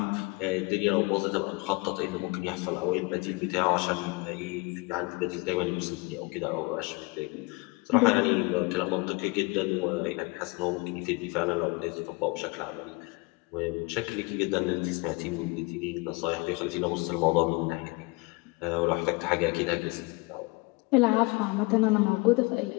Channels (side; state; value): right; quieter; 27.1 dB